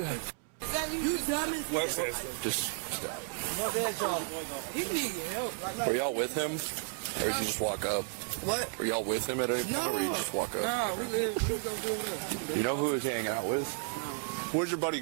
You dummy. Just stop. He need your help. Were y'all with him, or did you just walk up? What? Were y'all with him at any point, or you just walk up? Nah, we gonna do this. You know who he's hanging out with? Where's your buddy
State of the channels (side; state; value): left; silent; 56 dB below the other